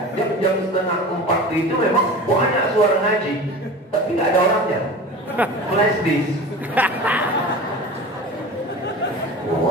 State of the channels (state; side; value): normal; both; correlation 0.35